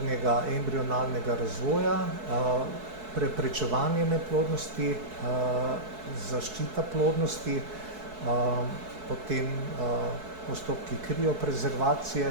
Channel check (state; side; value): late; left; 4.6 ms